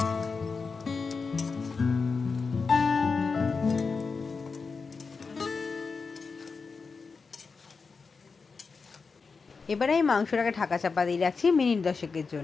এবারে আমি মাংসটাকে ঢাকা চাপা দিয়ে রাখছি মিনিট 10-এর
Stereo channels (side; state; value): right; quieter; 4.7 dB